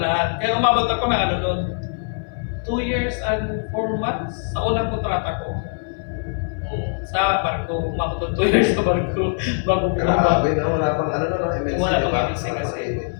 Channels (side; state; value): right; silent; 59 dB below the other